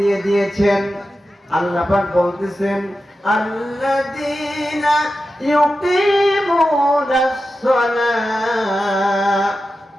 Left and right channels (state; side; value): normal; both; correlation 0.92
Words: দিয়েছেন। আল্লাহ পাক বলতেছেন, আল্লাযীনা ইউকিমুনাস সালাত।